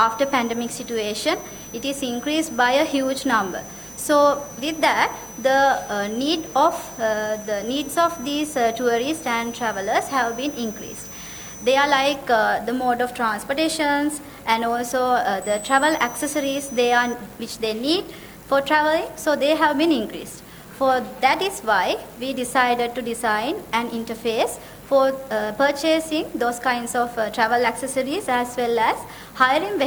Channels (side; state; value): both; identical; correlation 1.00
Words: pandemic situation, it is increased by a huge number. So with that, the needs of these tourists and travelers have been increased. They are like the mode of transportations and also the travel accessories which they need for traveling, so they have been increased. For that is why we decided to design an interface for purchasing those kinds of travel accessories as well as hiring